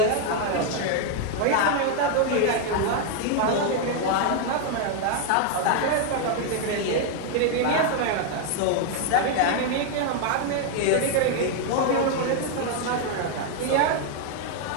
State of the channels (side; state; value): both; different; correlation 0.00